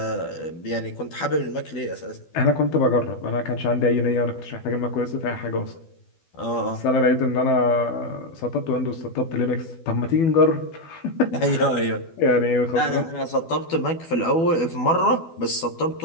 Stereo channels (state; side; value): late; right; 12 ms